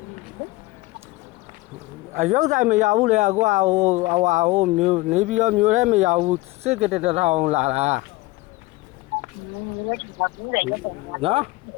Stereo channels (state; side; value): quieter; right; 20.5 dB